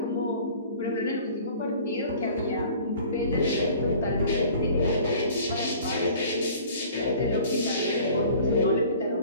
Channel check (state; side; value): inverted; both; correlation -0.48